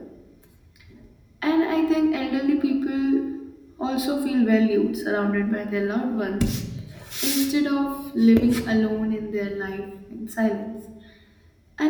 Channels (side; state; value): both; identical; correlation 1.00